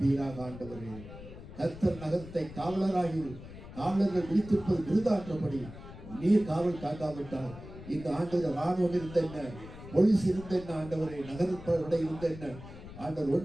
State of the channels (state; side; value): noise; left; rumble, 14 dB below the sound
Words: ஆண்டவரே. கர்த்தர் நகரத்தை காவலராகி காவலர்கள் விழித்திருப்பது விருதான்றபடி நீர் காவல் காக்காவிட்டால் இந்த ஆண்டு ராணுவம் இருந்த என்ன, போலீஸ் இருந்த என்ன ஆண்டவரே, நகரப்படை இருந்த என்ன ஆண்டவர்,